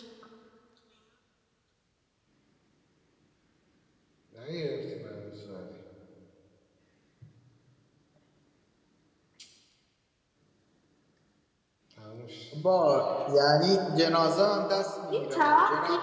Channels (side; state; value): both; identical; correlation 1.00